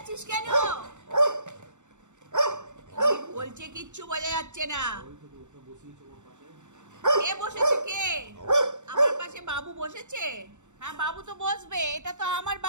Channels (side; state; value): left; late; 0.84 ms